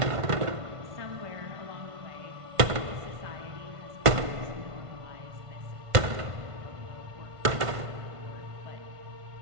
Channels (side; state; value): left; late; 1.5 ms